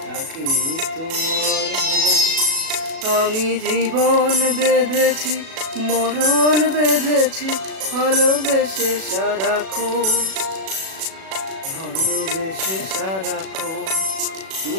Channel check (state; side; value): late; left; 37 ms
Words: নাকি তোমার মন? আমি জীবন বেঁধেছি, মরণ বেঁধেছি, ভালোবেসে সারাক্ষণ, ভালোবেসে সারাক্ষণ।